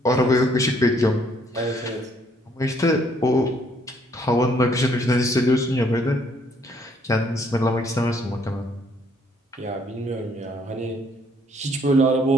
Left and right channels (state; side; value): normal; both; correlation 0.66